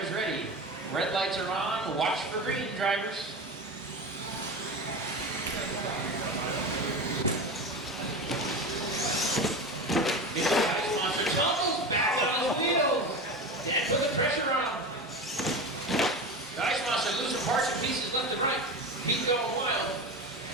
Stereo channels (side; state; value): both; normal; correlation 0.25